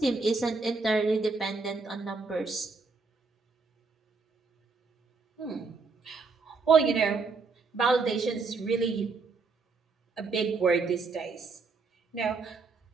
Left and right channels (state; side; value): quieter; left; 4.3 dB